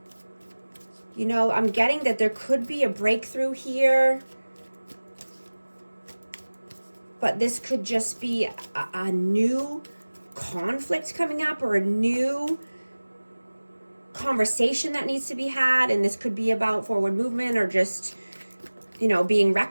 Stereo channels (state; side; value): inverted; both; correlation -1.00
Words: You know, I'm getting that there could be a breakthrough here. But this could just be a new conflict coming up, or a new conversation that needs to be had. And this could be about forward movement, or just, you know, being